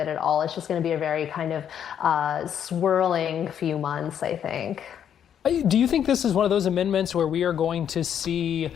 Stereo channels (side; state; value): right; quieter; 9.0 dB